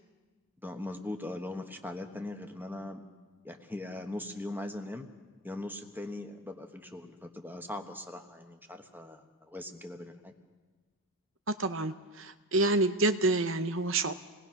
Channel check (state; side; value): normal; both; correlation 0.23